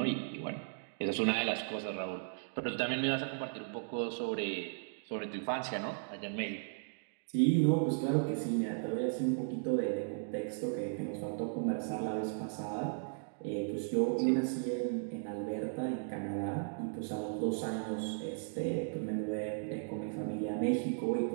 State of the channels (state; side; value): silent; left; digital silence